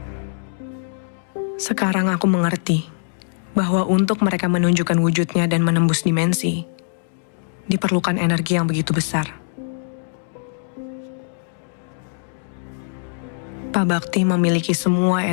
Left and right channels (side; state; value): right; silent; digital silence